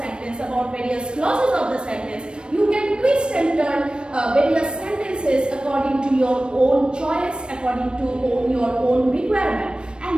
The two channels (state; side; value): late; left; 0.054 ms